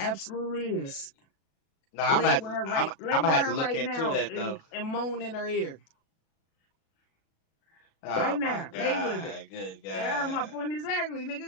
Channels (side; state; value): right; late; 37 ms